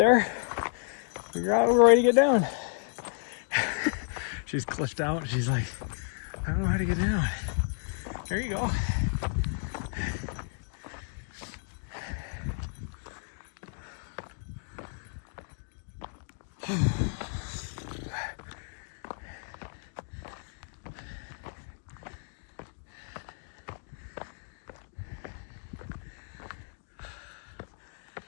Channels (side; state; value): right; silent; 56 dB below the other